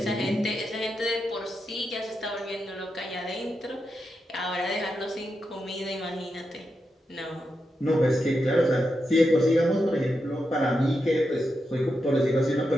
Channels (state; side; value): normal; both; correlation 0.87